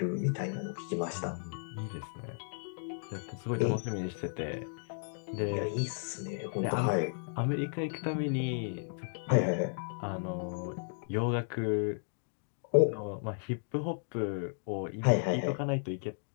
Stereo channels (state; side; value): silent; right; digital silence